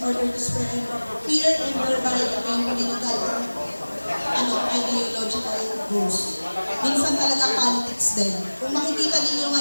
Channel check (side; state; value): both; inverted; correlation -1.00